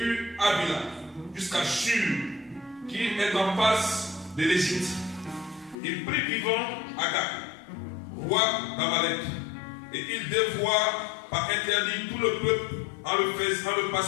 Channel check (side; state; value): right; drops out; at 5.8 s